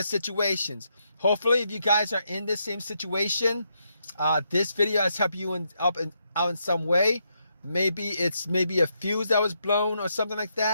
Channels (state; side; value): inverted; both; correlation -0.79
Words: situations. Hopefully, if you guys are in the same situation, this video has helped you out in some way. Maybe it's a fuse that was blown or something like